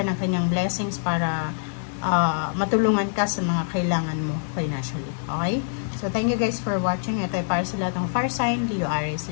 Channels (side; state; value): right; silent; digital silence